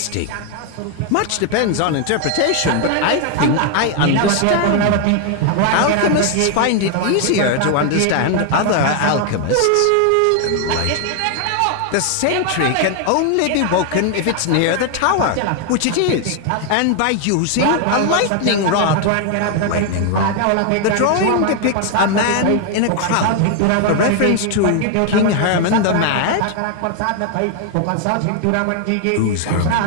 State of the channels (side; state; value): both; different; correlation 0.00